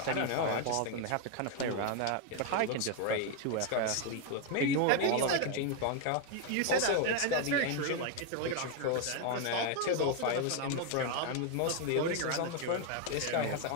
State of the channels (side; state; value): both; different; correlation 0.01